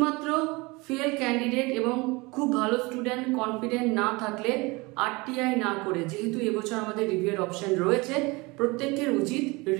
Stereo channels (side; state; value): left; quieter; 24.9 dB